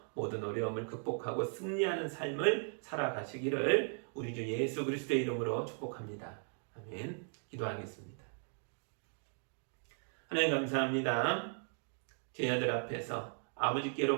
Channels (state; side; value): silent; left; 53 dB below the other